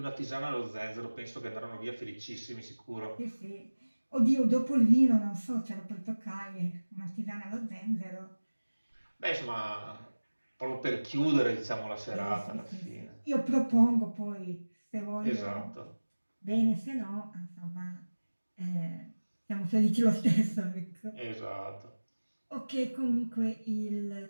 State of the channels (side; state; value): both; inverted; correlation -1.00